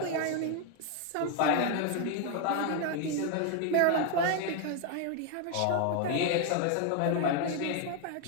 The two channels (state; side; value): different; both; correlation 0.01